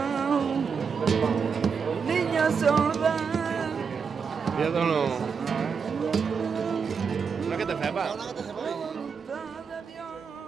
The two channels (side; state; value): left; quieter; 6.0 dB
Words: niña sorda. Vedono. Non che te fai ba?